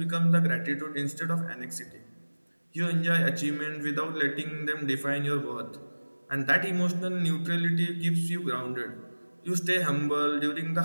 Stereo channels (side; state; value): both; inverted; correlation -1.00